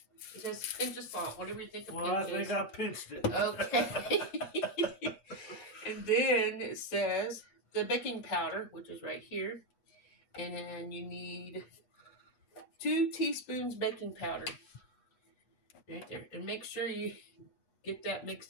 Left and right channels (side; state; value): right; late; 8.3 ms